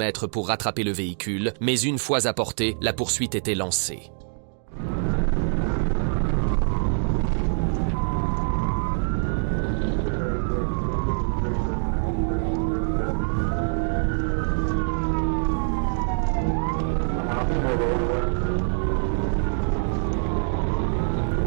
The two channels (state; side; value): silent; left; digital silence